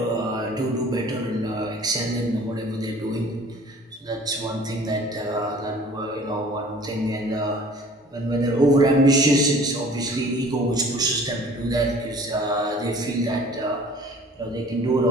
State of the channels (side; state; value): both; normal; correlation 0.49